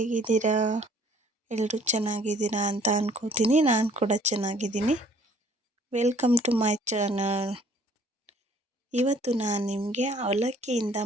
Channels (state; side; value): normal; both; correlation 0.58